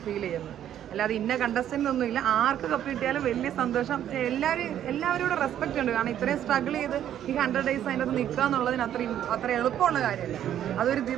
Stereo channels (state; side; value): quieter; left; 10.7 dB